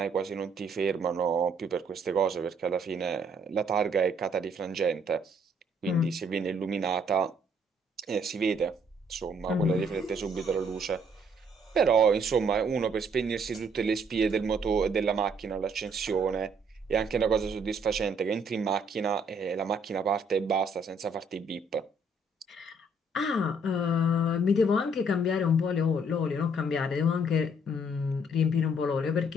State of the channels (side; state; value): both; normal; correlation 0.66